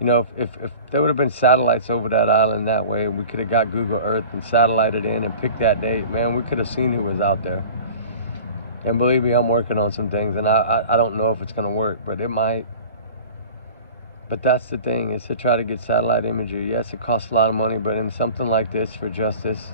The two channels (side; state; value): both; inverted; correlation -0.40